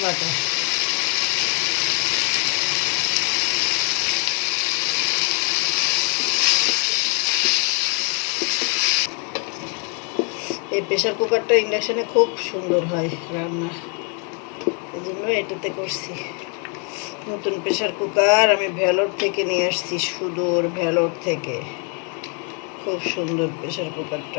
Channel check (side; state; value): right; quieter; 37.9 dB